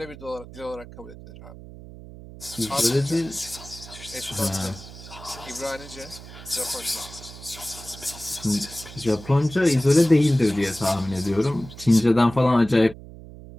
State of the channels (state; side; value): noise; right; hum, 16 dB below the sound